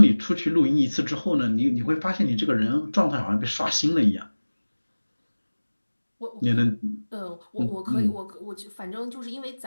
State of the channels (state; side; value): inverted; both; correlation -1.00